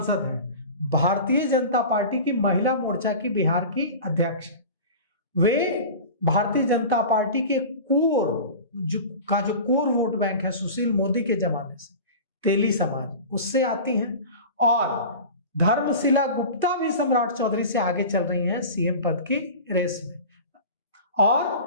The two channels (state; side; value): inverted; both; correlation -0.35